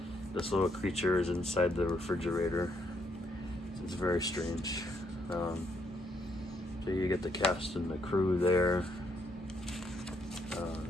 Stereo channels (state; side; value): normal; both; correlation 0.73